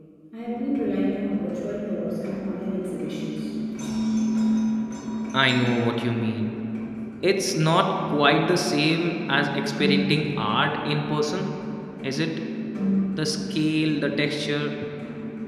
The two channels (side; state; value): both; identical; correlation 1.00